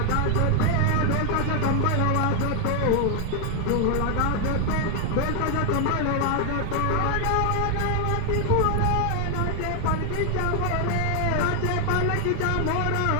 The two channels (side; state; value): both; different; correlation 0.00